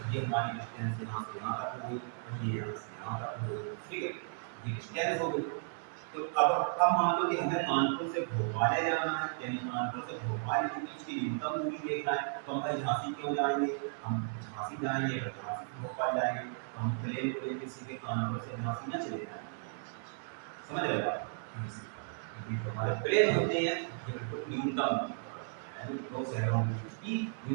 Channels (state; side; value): silent; left; 55 dB below the other